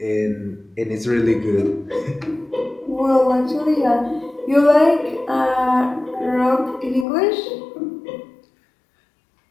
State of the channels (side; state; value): right; drops out; at 7.1 s